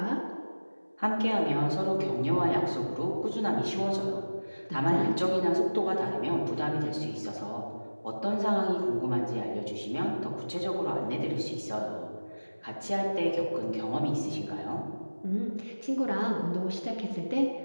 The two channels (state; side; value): inverted; both; correlation -1.00